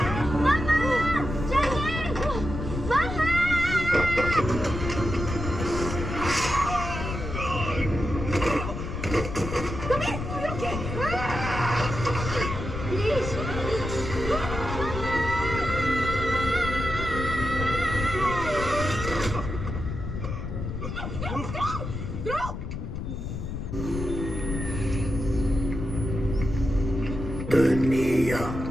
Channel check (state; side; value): noise; left; rumble, 5 dB below the sound